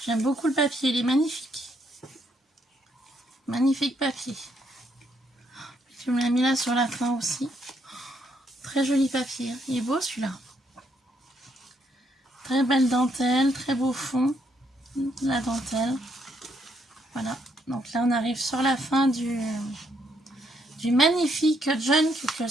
J'aime beaucoup le papier, il est magnifique. Magnifique papier. Tu me l'as mis là sur la fin aussi. Très joli papier. Il est beau celui-là. Très belle dentelle, très beau fond. La dentelle. Voilà. Donc là, on arrive sur la fin du magnifique junk que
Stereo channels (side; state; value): both; normal; correlation 0.73